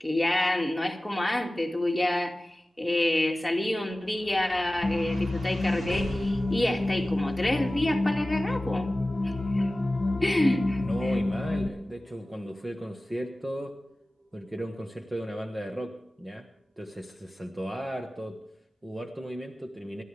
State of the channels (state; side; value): normal; both; correlation 0.96